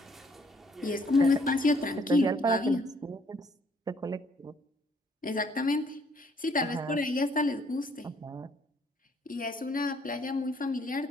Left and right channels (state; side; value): normal; both; correlation 0.65